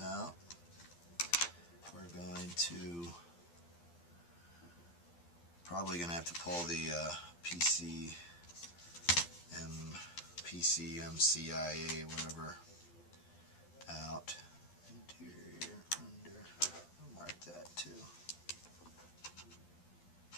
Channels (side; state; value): right; late; 12 ms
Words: out. We're going to probably going to have to pull the PCMCIA, whatever, out. Interior, under. I'll mark that too.